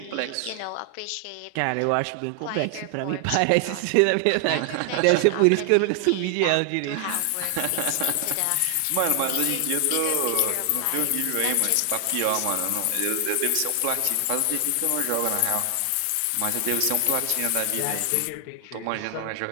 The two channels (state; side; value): different; both; correlation 0.00